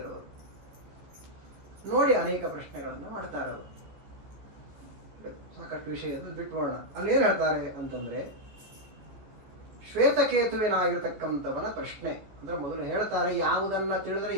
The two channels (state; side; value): late; left; 15 ms